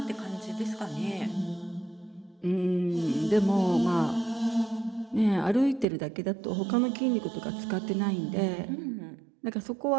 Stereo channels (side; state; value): left; drops out; at 5.9 s